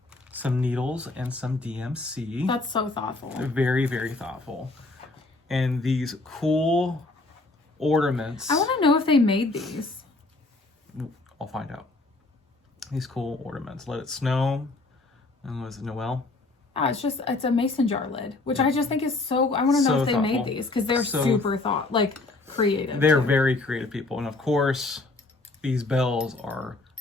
some needles and some DMC. That's so thoughtful. They're very, very thoughtful. And these cool ornaments. I want to know if they made these. I'll find out. These cool ornaments. Let It Snow. And was it Noel? It's a mason jar lid, which I just think is so, I want to know if they made these because they're super creative. They're very creative people. And of course, these bells are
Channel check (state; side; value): quieter; right; 3.2 dB